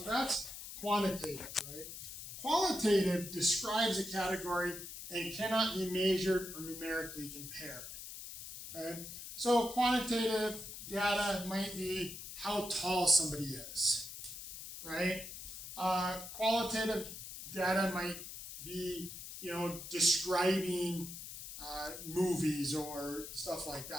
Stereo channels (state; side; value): noise; left; hiss, 10 dB below the sound